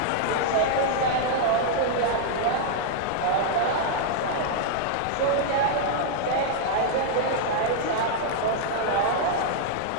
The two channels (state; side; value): different; both; correlation -0.01